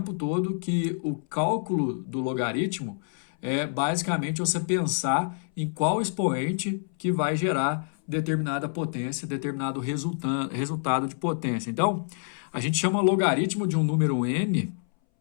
todo, que o cálculo do logaritmo é basicamente você pensar em qual expoente que vai gerar determinada potência, determinado resultado de potência. Então, a gente chama logaritmo de um número n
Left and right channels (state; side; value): silent; right; 60 dB below the other